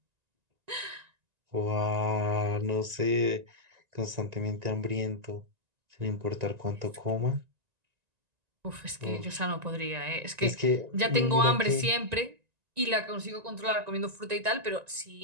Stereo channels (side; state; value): left; late; 1.9 ms